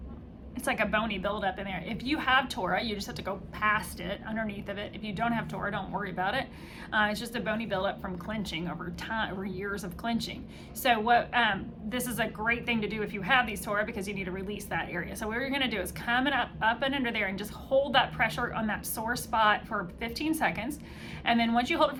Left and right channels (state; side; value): identical; both; correlation 1.00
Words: It's like a bony buildup in there. If you have tora, you just have to go past it, underneath of it. If you don't have tora, don't worry about it. It's just a bony buildup from clenching over time, over years of clenching. So this is a great thing to do if you have these tora, because you need to release that area. So what you're gonna do is come up and under there and just hold that pressure on that sore spot for 15 seconds. And then once you hold it